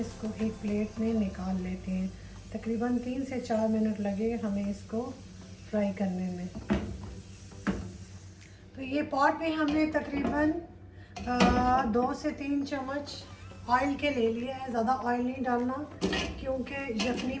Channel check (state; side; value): identical; both; correlation 1.00